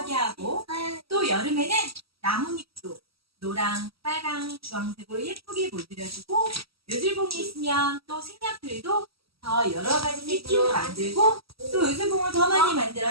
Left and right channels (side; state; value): left; late; 0.76 ms